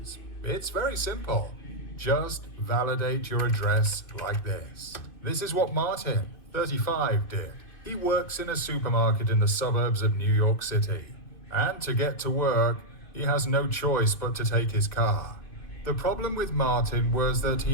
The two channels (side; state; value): right; late; 2.5 ms